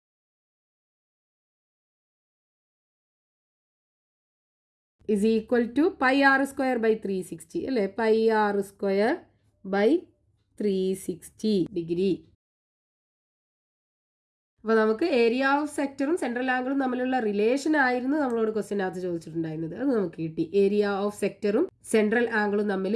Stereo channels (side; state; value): both; identical; correlation 1.00